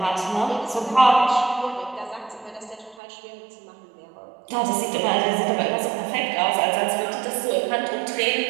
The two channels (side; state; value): left; drops out; at 3.0 s